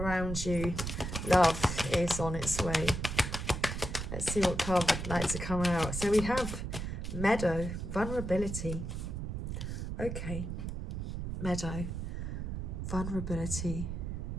you. Love is on its way. Let's see what card would like to come out. So we have Meadow, vulnerability. Okay, Meadow, vulnerability.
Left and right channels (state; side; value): noise; right; rumble, 4 dB below the sound